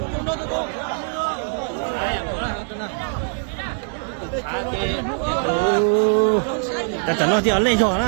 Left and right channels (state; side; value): silent; left; digital silence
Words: Ta chẳng nói thì ở lên rồi